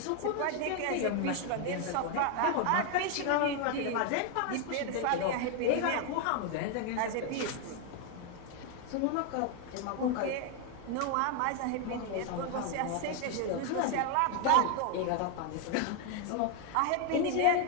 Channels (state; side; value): different; both; correlation 0.00